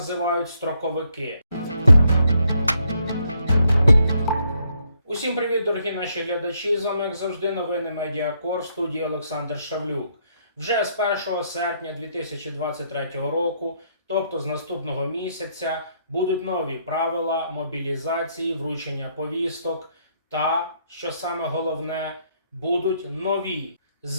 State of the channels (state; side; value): inverted; both; correlation -0.73